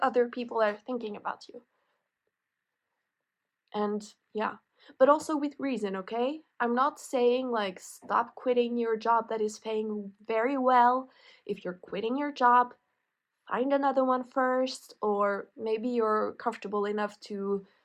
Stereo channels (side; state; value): both; identical; correlation 1.00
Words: other people are thinking about you. And yeah, but also with reason, okay? I'm not saying like stop quitting your job that is paying very well. If you're quitting your job, find another one first, or maybe you're comfortable enough to